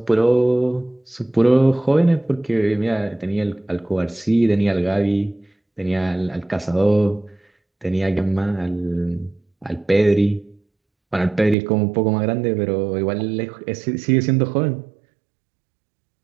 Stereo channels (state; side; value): drops out; left; at 11.6 s